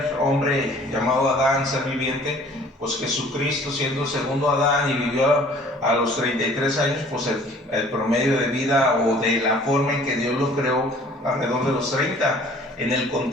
hombre llamado Adán, ser viviente, pues Jesucristo siendo el segundo Adán y vivió a los 33 años, pues el promedio de vida o de la forma en que Dios lo creó alrededor de los 30, en el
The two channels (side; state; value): both; normal; correlation 0.52